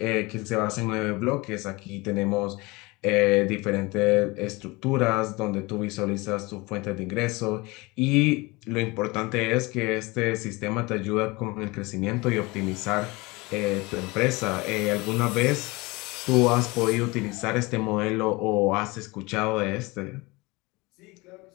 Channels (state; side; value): quieter; right; 23.9 dB